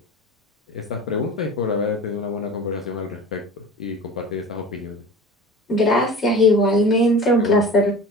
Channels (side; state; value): both; normal; correlation 0.37